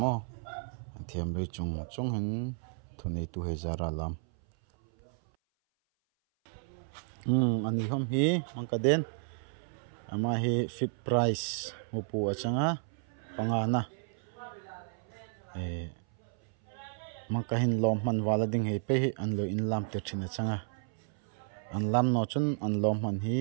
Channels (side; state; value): left; silent; 56 dB below the other